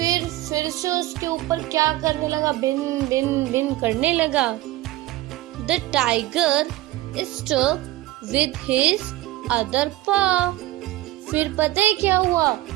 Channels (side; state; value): left; quieter; 16.6 dB